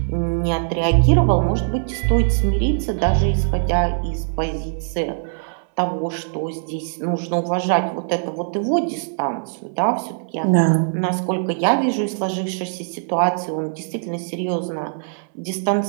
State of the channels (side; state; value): left; silent; 63 dB below the other